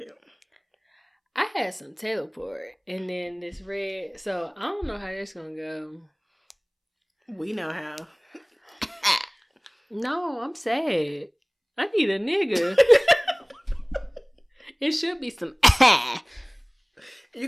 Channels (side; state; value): both; identical; correlation 1.00